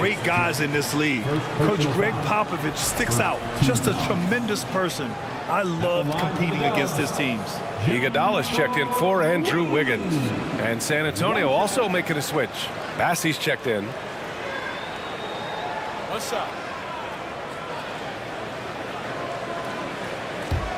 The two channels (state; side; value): identical; both; correlation 1.00